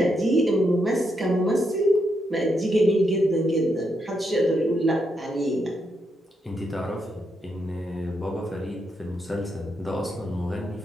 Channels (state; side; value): normal; both; correlation 0.81